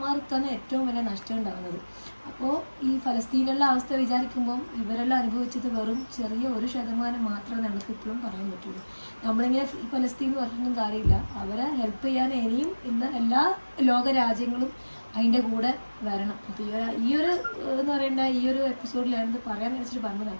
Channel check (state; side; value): inverted; both; correlation -1.00